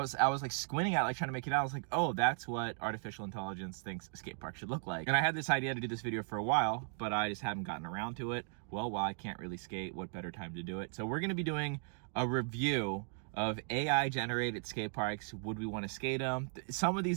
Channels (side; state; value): left; silent; 53 dB below the other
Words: like squinting at it, like trying to make it out. I was like, oh, that's what artificial intelligence thinks a skate park should look like. And I had this idea to do this video for a while, but I just haven't gotten around to it. Well, while I can't really skate, what better time to do it? So we're gonna be doing a review of AI generated skate parks. Would we want to skate them? Some of